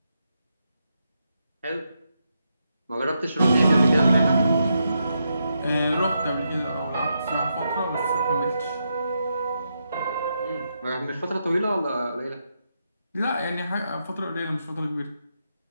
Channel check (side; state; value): both; inverted; correlation -0.83